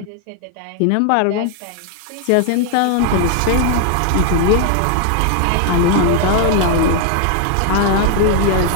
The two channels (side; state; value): both; different; correlation 0.00